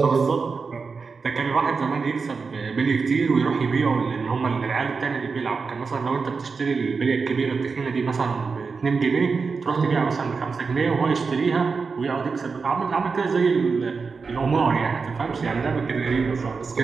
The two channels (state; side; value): quieter; left; 4.9 dB